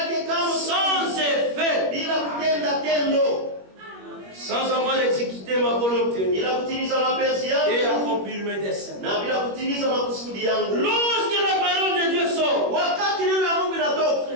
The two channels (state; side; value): late; left; 21 ms